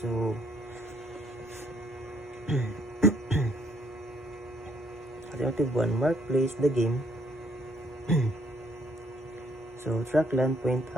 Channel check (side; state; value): both; normal; correlation 0.68